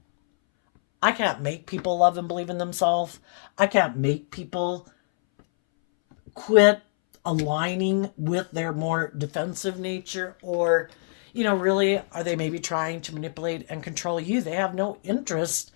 I can't make people love and believe in themselves. I can't make people quit aligning with their more defensive nature, or really, are they maybe trying to manipulate and control you? They have no interest.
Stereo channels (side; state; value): right; silent; 61 dB below the other